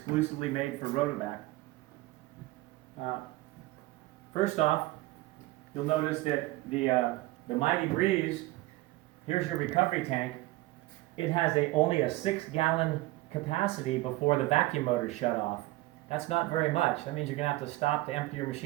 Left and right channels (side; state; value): left; quieter; 19.0 dB